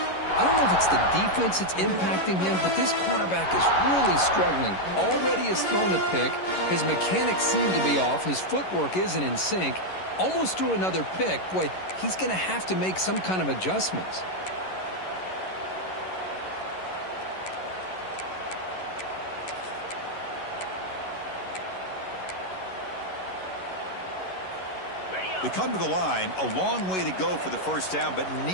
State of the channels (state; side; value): late; right; 11 ms